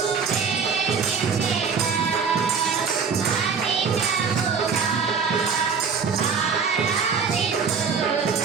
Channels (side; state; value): left; quieter; 5.9 dB